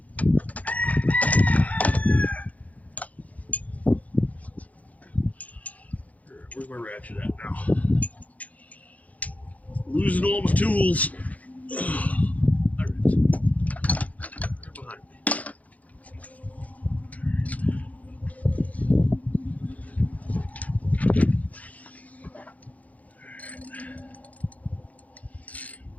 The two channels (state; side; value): late; right; 0.072 ms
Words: Where's my ratchet at now? Losing all my tools. There it is. Right behind me.